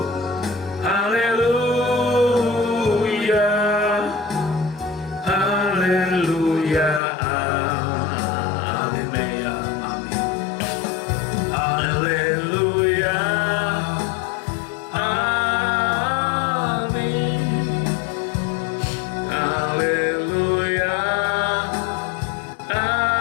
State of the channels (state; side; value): drops out; right; at 7.0 s